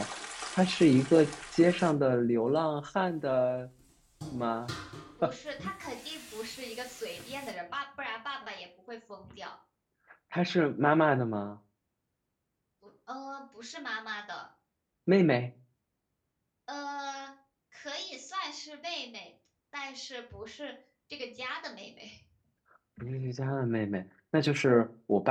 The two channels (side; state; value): both; identical; correlation 1.00